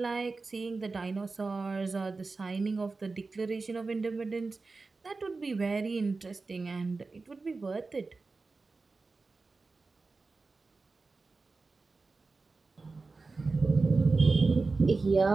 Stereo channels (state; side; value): quieter; left; 3.9 dB